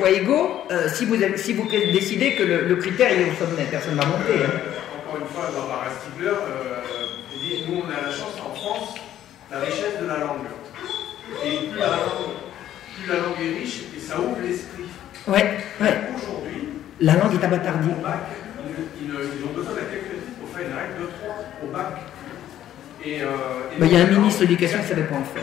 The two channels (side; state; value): right; quieter; 11.8 dB